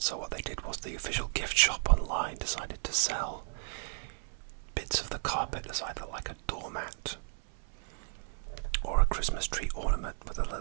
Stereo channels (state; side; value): silent; left; 55 dB below the other